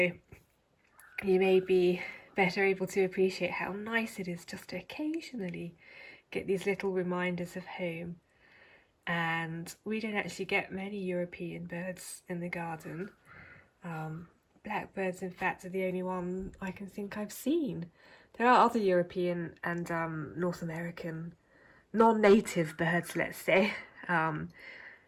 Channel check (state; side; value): identical; both; correlation 1.00